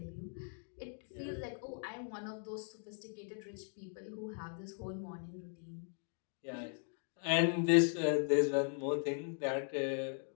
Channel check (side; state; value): right; silent; 52 dB below the other